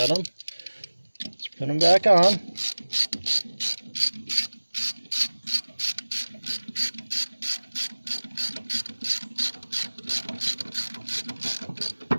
them. Let's put them back on.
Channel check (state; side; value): inverted; both; correlation -1.00